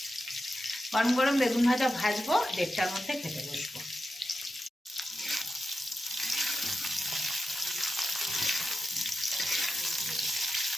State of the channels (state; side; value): normal; both; correlation 0.90